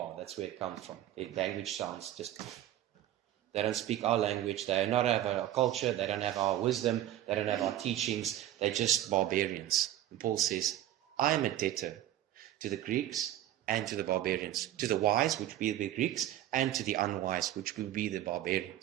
that's where it comes from. Their language sounds just... They don't speak our language. They do not have our culture. They don't have our wisdom. They don't have our teachings. They're just barbarians. And Paul says, I am a debtor to the Greeks and to the barbarians. To the wise, which will be the Greeks, and to the unwise, which will be the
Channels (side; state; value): left; quieter; 12.8 dB